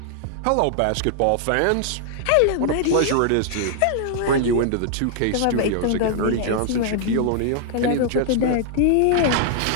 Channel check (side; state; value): both; different; correlation -0.01